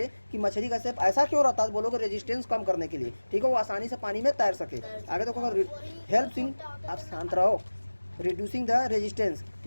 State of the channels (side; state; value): both; inverted; correlation -1.00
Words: कि मछली का शेप ऐसा क्यों रहता है, बोलोगे रेजिस्टेंस कम करने के लिए, ठीक है, वो आसानी से पानी में तैर सके। आगे देखो, हेल्प इन, आप शांत रहो, रिड्यूसिंग द रेजिस्टेंस,